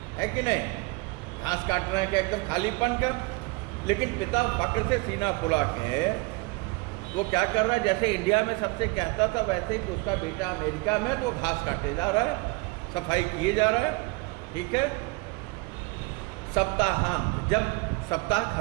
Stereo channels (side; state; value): left; quieter; 26.4 dB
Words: कि नहीं, घास काट रहे हैं कि एकदम खालीपन का। लेकिन पिता फक्र से सीना फुला के वो क्या कर रहा है, जैसे इंडिया में सबसे कहता था वैसे ही कि उसका बेटा अमेरिका में तो घास काटे जा रहा है, सफाई किए जा रहा है, ठीक है। सप्ताहांत, जब सप्ताह